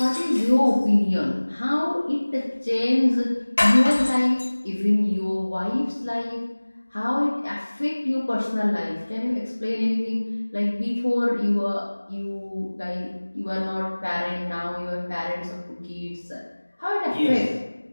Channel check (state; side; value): inverted; both; correlation -1.00